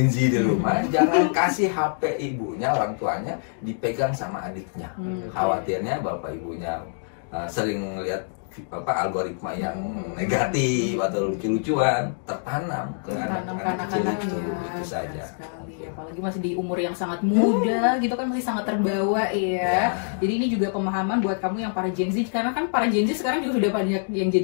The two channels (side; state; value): right; silent; digital silence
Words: Z di rumah, jangan kasih HP ibunya, orang tuanya dipegang sama adiknya. Khawatirnya bapak ibunya sering lihat algoritma yang negatif atau lucu-lucuan tertanam ke anak-anak kecil itu saja. Apalagi masih di umur yang sangat muda gitu kan, masih sangat terbawa ya. Jadi ini juga pemahaman buat kamu yang para Gen Z, karena kan para Gen Z sekarang juga sudah banyak yang